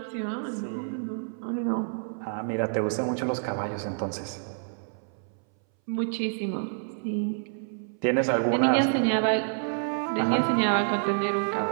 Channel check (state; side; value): silent; left; 59 dB below the other